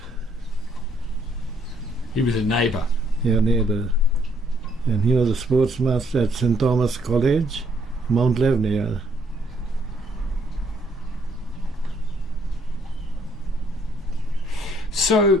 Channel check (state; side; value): normal; both; correlation 0.68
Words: He was a neighbour. Yeah, neighbour. And he was a sports master at St. Thomas College, Mount Lebanon.